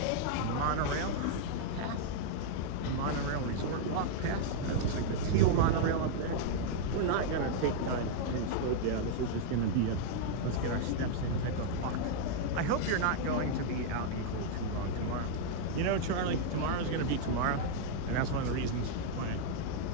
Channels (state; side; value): different; both; correlation -0.01